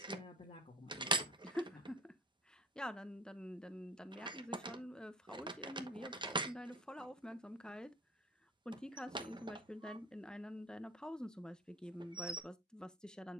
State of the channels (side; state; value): both; normal; correlation 0.38